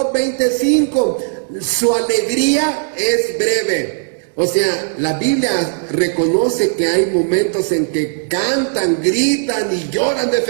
25, su alegría es breve. O sea, la Biblia reconoce que hay momentos en que cantan, gritan y lloran de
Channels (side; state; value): left; silent; digital silence